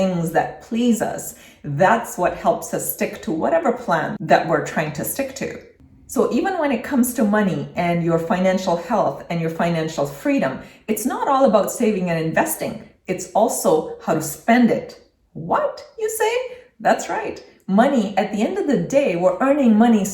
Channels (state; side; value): identical; both; correlation 1.00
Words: that please us. That's what helps us stick to whatever plan that we're trying to stick to. So even when it comes to money and your financial health and your financial freedom, it's not all about saving and investing. It's also how to spend it. What, you say? That's right. Money, at the end of the day, we're earning money